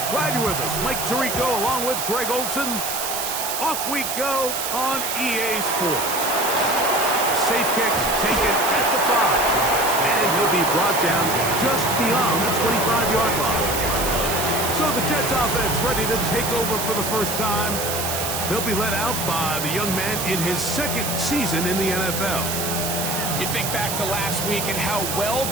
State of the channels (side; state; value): right; noise; hiss, 3 dB below the sound